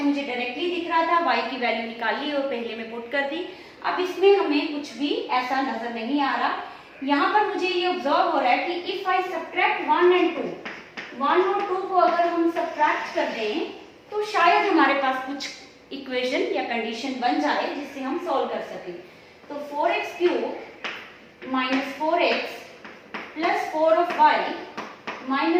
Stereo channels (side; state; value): both; identical; correlation 1.00